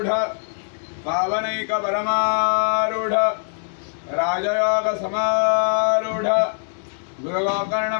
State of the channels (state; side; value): silent; right; digital silence